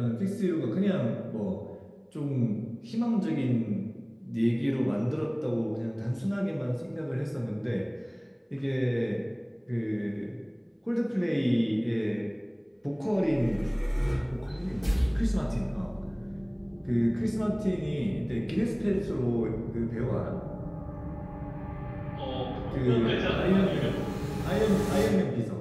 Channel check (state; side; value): identical; both; correlation 1.00